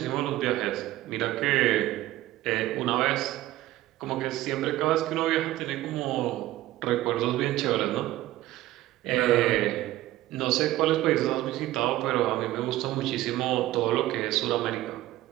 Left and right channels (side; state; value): left; quieter; 15.8 dB